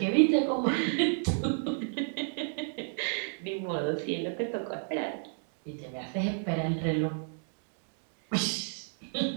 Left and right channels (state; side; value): silent; left; digital silence